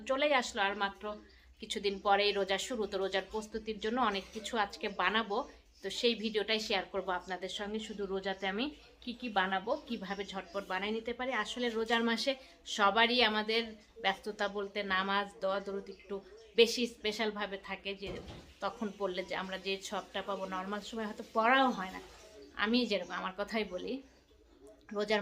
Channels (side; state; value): both; identical; correlation 1.00